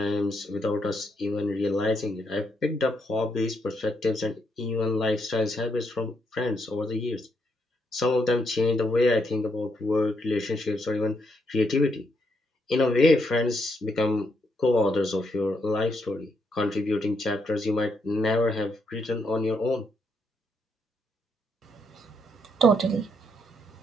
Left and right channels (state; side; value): normal; both; correlation 0.77